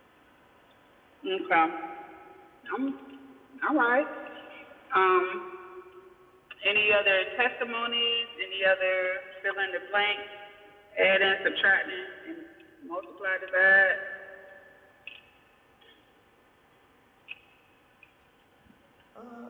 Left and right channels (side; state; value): both; identical; correlation 1.00